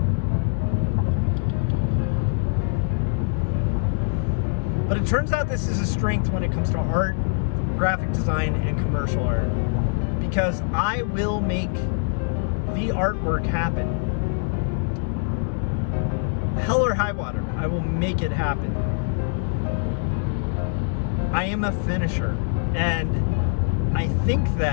But it turns out this is a strength when it comes to art, graphic design, and commercial art. Because I will make the artwork happen. Hell or high water, I will make it happen. I am a finisher, and I think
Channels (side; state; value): right; silent; 63 dB below the other